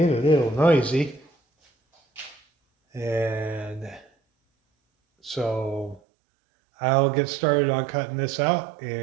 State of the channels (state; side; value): drops out; left; at 6.0 s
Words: a little noisy. And so I'll get started on cutting this out